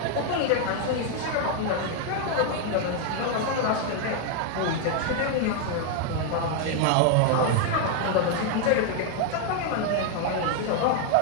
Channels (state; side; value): different; both; correlation 0.00